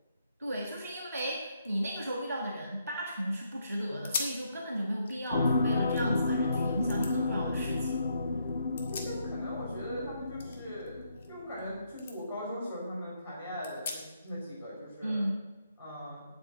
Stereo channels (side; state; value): both; inverted; correlation -0.76